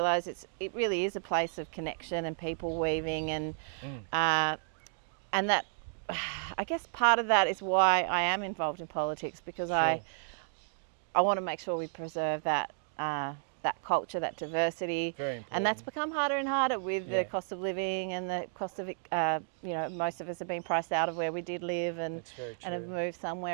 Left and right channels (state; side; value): silent; left; digital silence